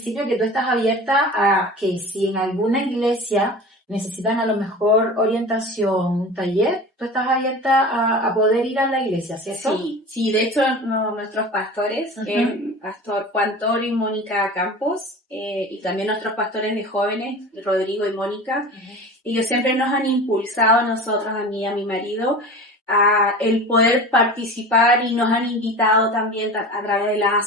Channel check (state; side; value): normal; both; correlation 0.35